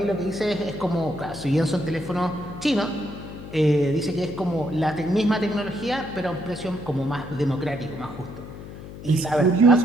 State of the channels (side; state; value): left; noise; hum, 13 dB below the sound